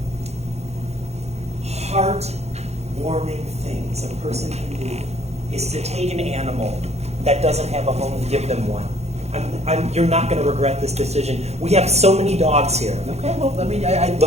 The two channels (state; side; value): late; left; 0.31 ms